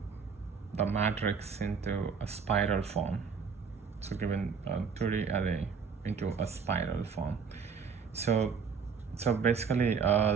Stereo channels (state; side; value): quieter; left; 5.9 dB